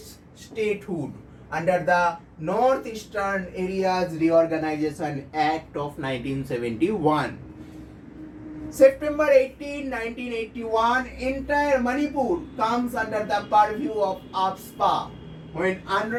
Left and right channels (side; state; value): both; identical; correlation 1.00